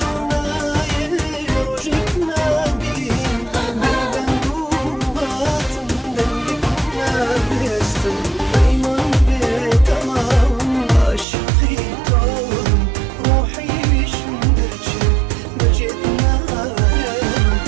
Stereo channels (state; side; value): drops out; left; at 11.2 s